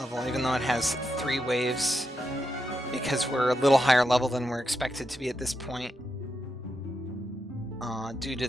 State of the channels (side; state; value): both; normal; correlation 0.85